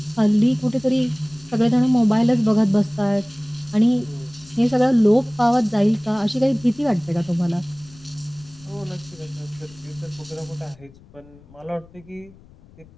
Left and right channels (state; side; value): noise; left; rumble, 25 dB below the sound